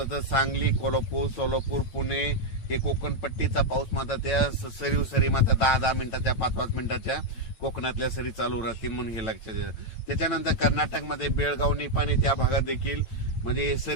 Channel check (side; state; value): right; late; 8.9 ms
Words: तर सांगली, कोल्हापूर, सोलापूर, पुणे हे कोकण पट्टीचा पाऊस मात्र त्या सरी मात्र 10 मिनिटाच्या 5 मिनिटाच्या कोकणातल्या सरी चालू राहतील, म्हणून हे लक्षात द्या. त्याच्यानंतर कर्नाटकमध्ये बेळगाव, निपाणी त्या भागात देखील म्हणजे